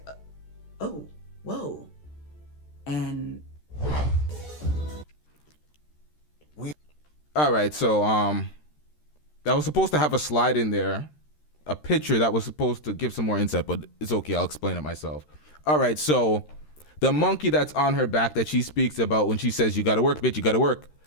oh, whoa. And all right, so that was supposed to have a slide in there, a picture that was supposed to give some more insight, but it's okay, I'll explain it myself. All right, so the monkey that's on her back that she speaks about when she says, you gotta work, bitch, you gotta work.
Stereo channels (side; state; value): right; late; 13 ms